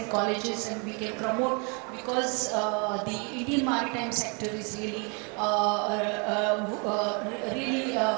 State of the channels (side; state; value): left; quieter; 33.9 dB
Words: colleges, and we can promote, because the Indian maritime sector is really